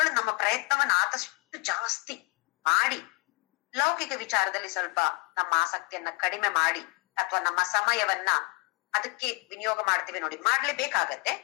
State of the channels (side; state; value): right; quieter; 26.4 dB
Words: ನಮ್ಮ ಪ್ರಯತ್ನವನ್ನ ಆದಷ್ಟು ಜಾಸ್ತಿ ಮಾಡಿ, ಲೌಕಿಕ ವಿಚಾರದಲ್ಲಿ ಸ್ವಲ್ಪ ನಮ್ಮ ಆಸಕ್ತಿಯನ್ನ ಕಡಿಮೆ ಮಾಡಿ, ಅಥವಾ ನಮ್ಮ ಸಮಯವನ್ನ ಅದಕ್ಕೆ ವಿನಿಯೋಗ ಮಾಡ್ತೀವಿ ನೋಡಿ, ಮಾಡ್ಲೇಬೇಕಾಗತ್ತೆ.